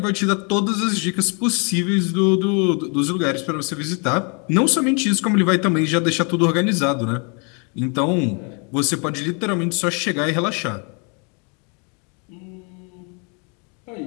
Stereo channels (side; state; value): right; quieter; 35.4 dB